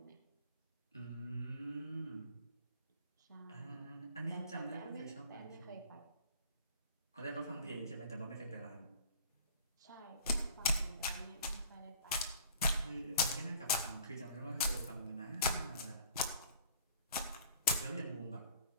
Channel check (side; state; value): both; inverted; correlation -0.48